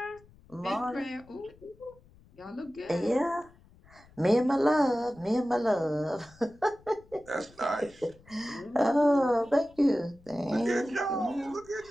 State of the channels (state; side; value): noise; left; rumble, 26 dB below the sound